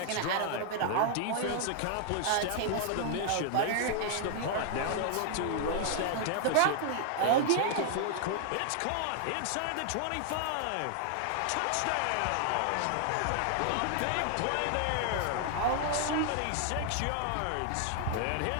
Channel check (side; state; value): both; different; correlation 0.00